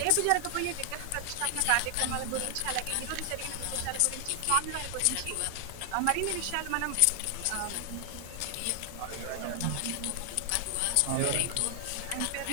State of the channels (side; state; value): both; different; correlation 0.00